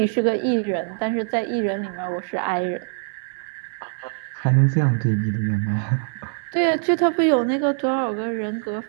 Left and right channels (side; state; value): left; silent; digital silence